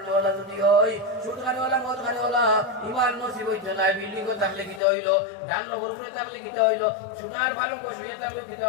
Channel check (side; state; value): right; drops out; at 4.8 s